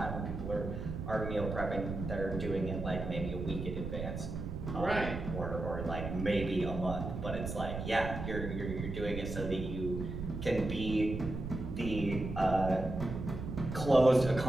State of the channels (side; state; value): right; noise; rumble, 5 dB below the sound